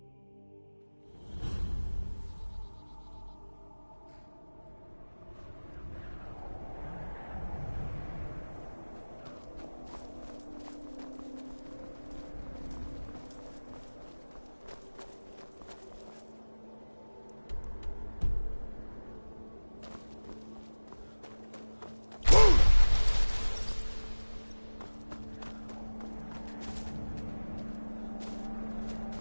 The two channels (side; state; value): both; inverted; correlation -1.00